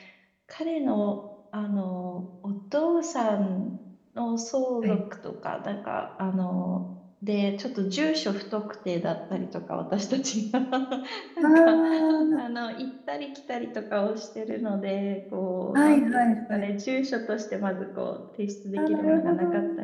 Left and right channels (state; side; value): identical; both; correlation 1.00